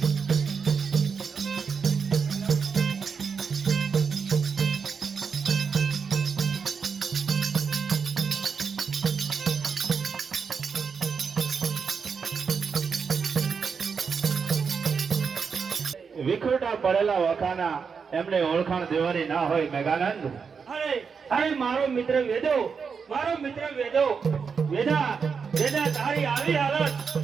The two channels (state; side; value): quieter; left; 5.9 dB